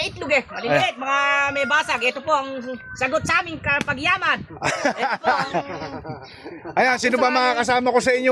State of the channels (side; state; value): both; identical; correlation 1.00